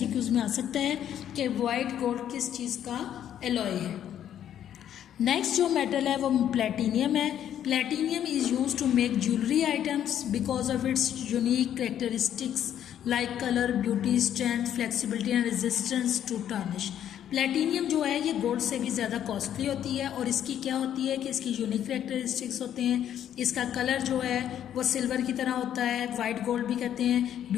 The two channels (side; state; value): right; quieter; 10.3 dB